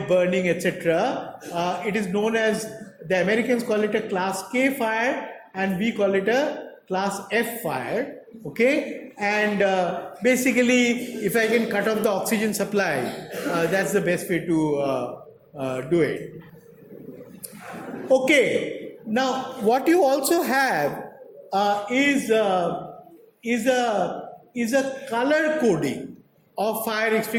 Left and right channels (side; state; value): both; identical; correlation 1.00